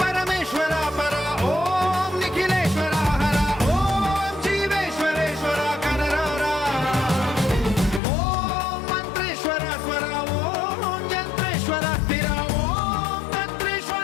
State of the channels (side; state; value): right; drops out; at 8.0 s